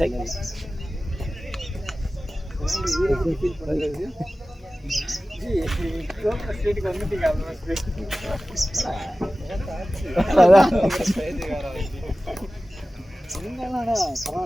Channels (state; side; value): normal; both; correlation 0.96